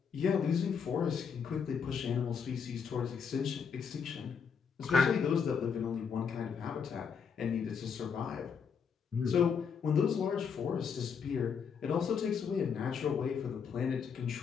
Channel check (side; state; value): right; quieter; 6.5 dB